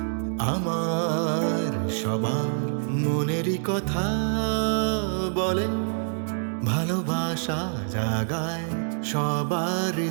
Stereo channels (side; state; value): left; silent; digital silence